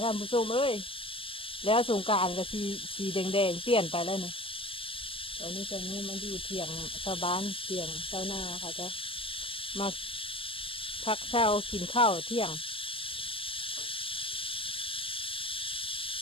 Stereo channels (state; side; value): late; right; 0.26 ms